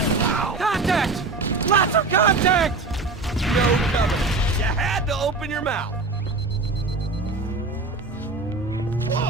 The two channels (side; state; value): left; quieter; 3.6 dB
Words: Contact! Lots of contact! No Covenant. You had to open your mouth.